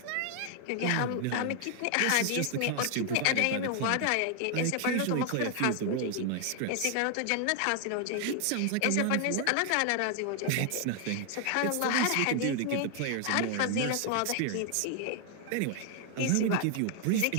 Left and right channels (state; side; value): different; both; correlation 0.00